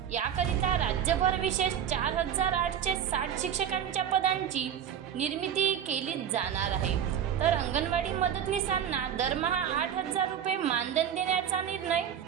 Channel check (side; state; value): left; quieter; 9.2 dB